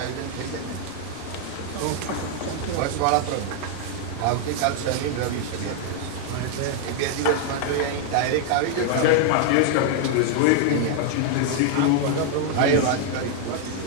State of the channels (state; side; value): different; both; correlation 0.00